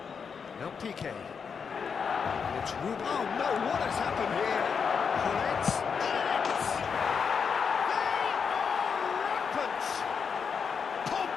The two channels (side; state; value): right; quieter; 6.2 dB